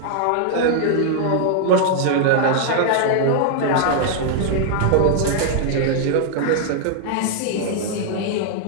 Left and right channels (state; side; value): different; both; correlation -0.01